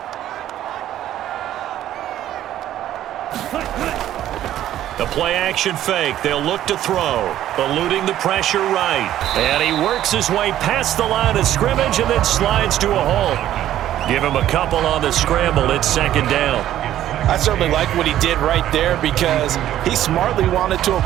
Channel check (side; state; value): left; quieter; 12.4 dB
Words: The play-action fake. They'll look to throw. Eluding the pressure right. And he works his way past the line of scrimmage and then slides to a hole. Give him a couple on the scramble. It's 2nd down. I certainly like what he did right there because he smartly wanted to